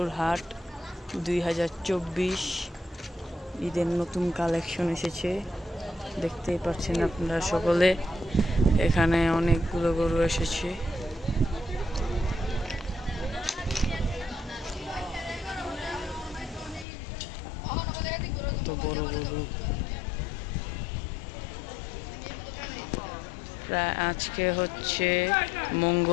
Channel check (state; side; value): drops out; right; at 16.9 s